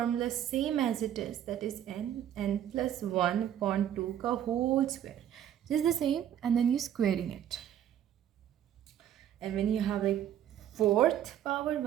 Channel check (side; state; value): left; quieter; 10.5 dB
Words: same as it is, that is n plus 1 upon 2 ka whole square. Just the same, and then you squaring it. And when you have like 4th power